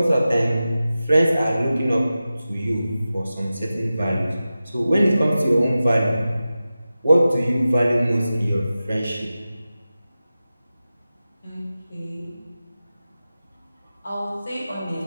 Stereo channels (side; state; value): both; inverted; correlation -0.94